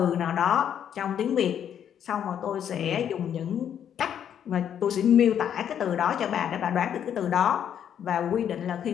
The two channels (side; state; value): right; quieter; 9.2 dB